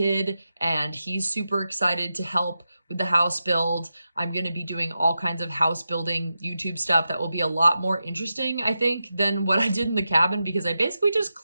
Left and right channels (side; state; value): both; inverted; correlation -0.90